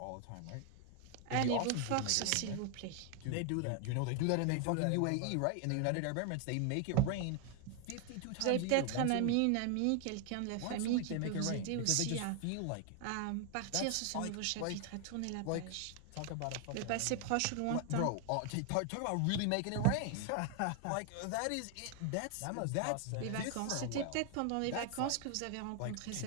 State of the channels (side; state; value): both; different; correlation 0.00